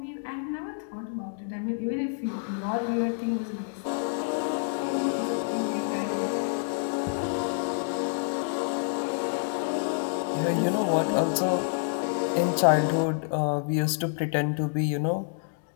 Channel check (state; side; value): silent; right; digital silence